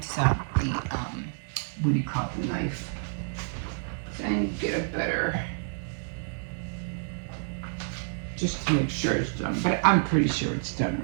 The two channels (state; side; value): silent; left; digital silence